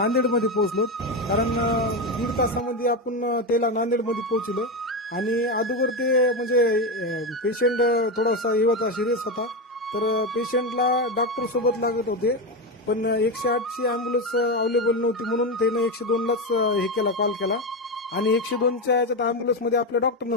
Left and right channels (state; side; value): normal; both; correlation 0.14